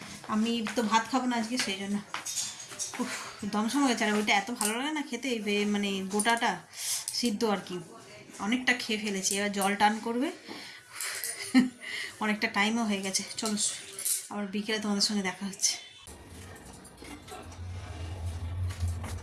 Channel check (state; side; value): identical; both; correlation 1.00